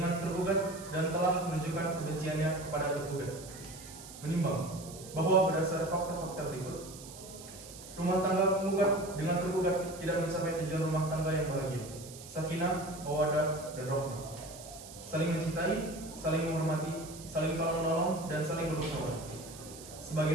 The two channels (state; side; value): noise; right; hiss, 15 dB below the sound